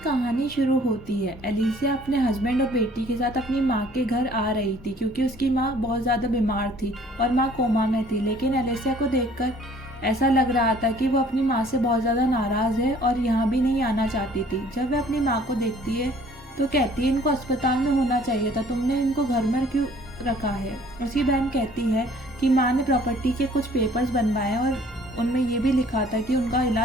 शुरू होती है। एलिसिया अपने हस्बैंड और बेटी के साथ अपनी माँ के घर आ रही थी क्योंकि उसकी माँ बहुत ज़्यादा बीमार थी और माँ कोमा में थी। लेकिन एलिसिया को देखकर ऐसा लग रहा था कि वो अपनी माँ से बहुत ज़्यादा नाराज़ है और यहाँ भी नहीं आना चाहती थी। जब वह अपनी माँ को देखती है तो कहती है, इनको अस्पताल में होना चाहिए था, तुमने इनको घर में क्यों रखा है। उसकी बहन कहती है कि माँ ने प्रॉपर्टी के कुछ पेपर्स बनवाए और उनमें ये भी लिखा था कि उनका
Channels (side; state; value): both; normal; correlation 0.56